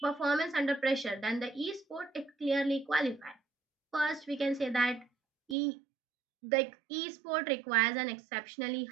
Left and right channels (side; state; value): left; drops out; at 5.6 s